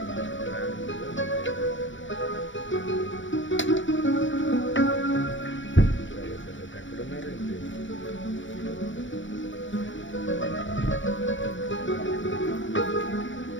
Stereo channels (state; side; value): late; right; 0.55 ms